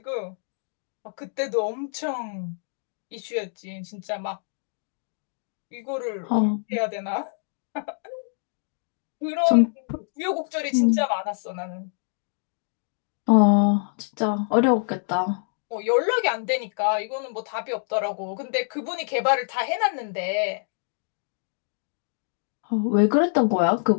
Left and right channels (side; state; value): right; silent; digital silence